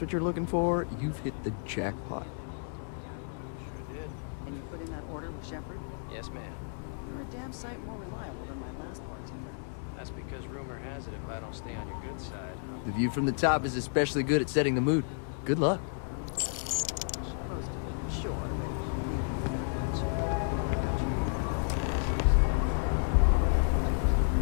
what you're looking for, you've hit the jackpot. Can you put in that order with Shepard? Yes, ma'am. You're a damn sight more reliable than my last bartender. That's because rumor has it if I don't stay on your good side. The view from the top is especially good at setting the mood. Good luck.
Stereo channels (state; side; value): silent; right; digital silence